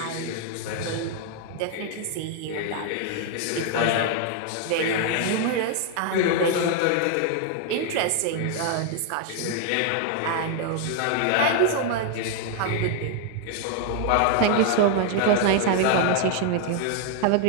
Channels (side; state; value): both; different; correlation 0.00